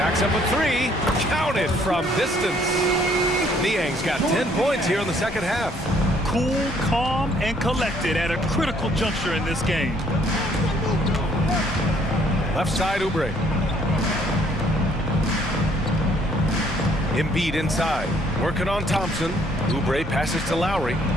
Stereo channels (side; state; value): both; normal; correlation 0.64